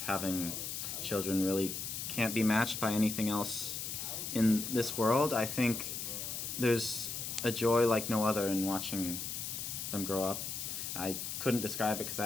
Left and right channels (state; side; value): noise; left; hiss, 5 dB below the sound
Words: having children really can't be matched by anything else in this world. I think there's a joy like no other in watching them grow up. I couldn't describe it because I